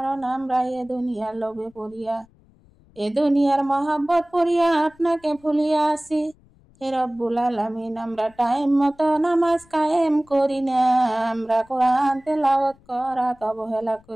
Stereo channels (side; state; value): left; noise; rumble, 30 dB below the sound